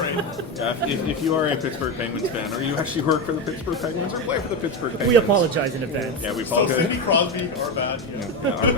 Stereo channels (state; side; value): normal; both; correlation 0.14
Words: Yeah, if you are a Pittsburgh Penguins fan, or you actually work for the Pittsburgh Penguins, or play for the Pittsburgh Penguins. We apologize in advance. Yeah, we So apologize. Sidney Crosby, our bad. Yeah. Yeah, our